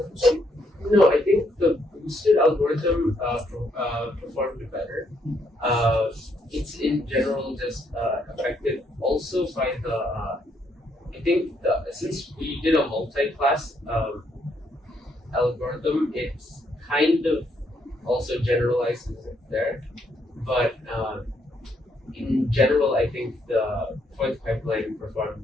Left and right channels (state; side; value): normal; both; correlation 0.73